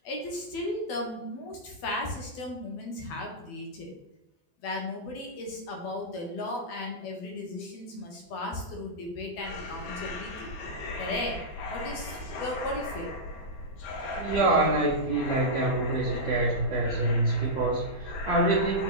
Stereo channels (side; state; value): right; late; 12 ms